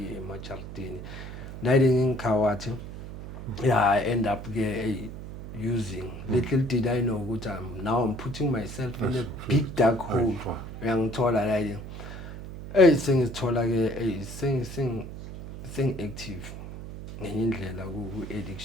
eMajardini diding inkhawatha yeah I end up ke using little did I know ukuthi I'm putting myself in a big dark hole uyangithola la sengithola ke sing active ngenye indlela ku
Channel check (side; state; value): right; noise; hum, 10 dB below the sound